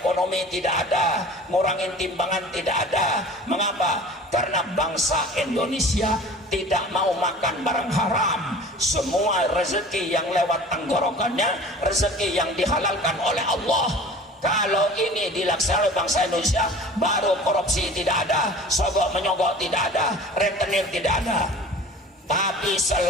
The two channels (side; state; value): both; normal; correlation 0.42